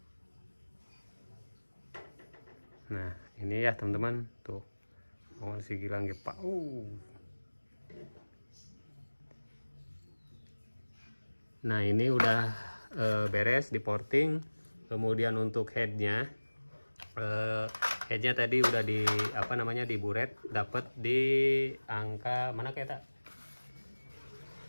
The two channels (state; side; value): inverted; both; correlation -1.00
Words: Nah ini ya teman-teman, tuh mau si gilang pak. Nah ini udah beres di porting. Kemudian untuk headnya tadi udah di apa namanya diburet, dapat di angka mana kayak tak.